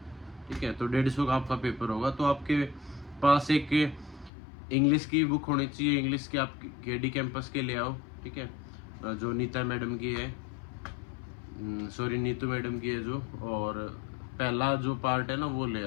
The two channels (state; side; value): drops out; right; at 4.3 s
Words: ठीक है। तो 150 का आपका पेपर होगा, तो आपके पास एक इंग्लिश की बुक होनी चाहिए, इंग्लिश की आप KD कैंपस के ले आओ, ठीक है, जो नीता मैडम की है, सॉरी नीतू मैडम की है जो, और पहला जो पार्ट है ना वो ले